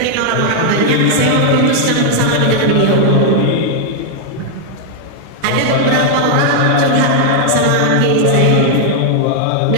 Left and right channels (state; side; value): different; both; correlation 0.00